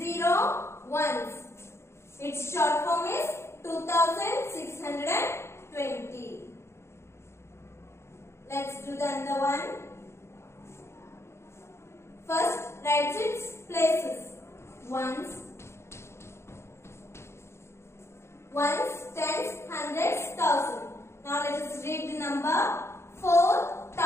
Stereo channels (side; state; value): right; late; 0.13 ms